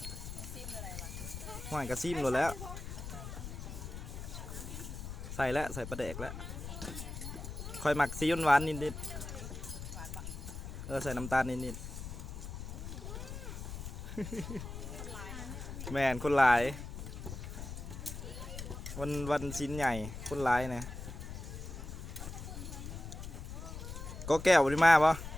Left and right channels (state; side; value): noise; left; rumble, 8 dB below the sound